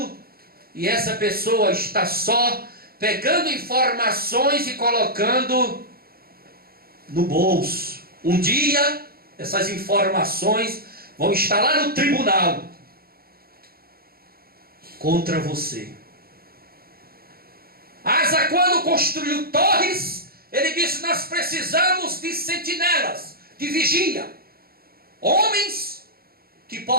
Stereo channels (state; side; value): late; left; 0.44 ms